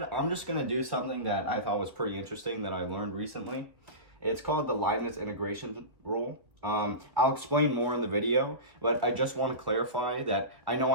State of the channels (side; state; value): left; late; 1.7 ms